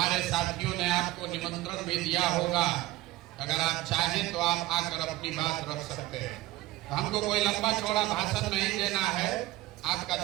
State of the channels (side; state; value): left; quieter; 17.4 dB